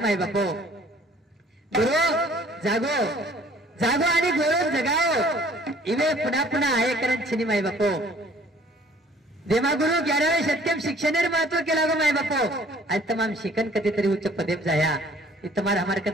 बापो गुरु जागो जागो आणि गोरो जगाओ इवे पुन्हा पुन्हा आहे करण छिनी माय बापो देवा गुरु 11वे सत्यम शिक्षणेर महत्व केला गो माय बापो आज तमाम शिकन कधीतरी उच्च पदेप जाया तुम्हार हमार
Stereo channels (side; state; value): both; normal; correlation 0.55